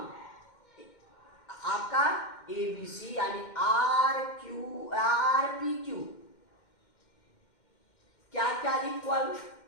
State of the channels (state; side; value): late; right; 2.1 ms